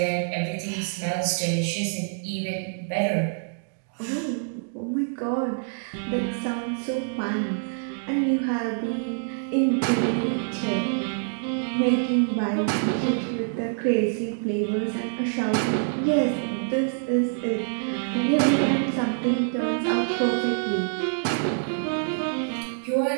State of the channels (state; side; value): silent; left; digital silence